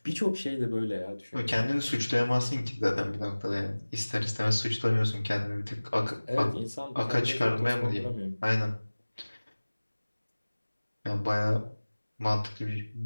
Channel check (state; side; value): inverted; both; correlation -1.00